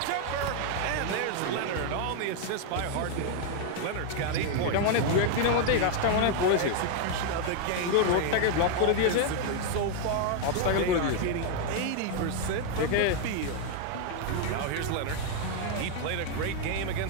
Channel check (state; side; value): different; both; correlation 0.00